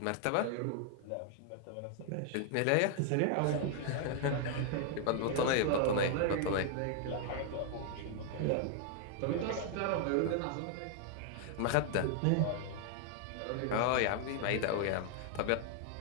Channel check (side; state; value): both; different; correlation 0.00